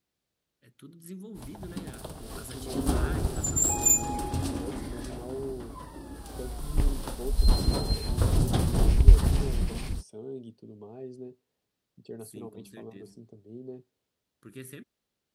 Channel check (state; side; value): identical; both; correlation 1.00